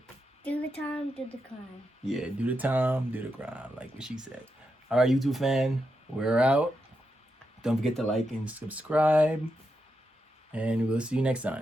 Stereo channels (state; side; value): normal; both; correlation 0.85